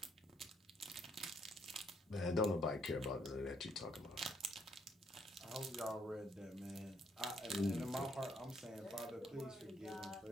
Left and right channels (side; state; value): both; normal; correlation 0.70